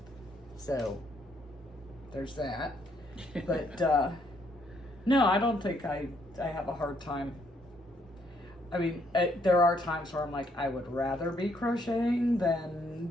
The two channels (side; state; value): both; normal; correlation 0.71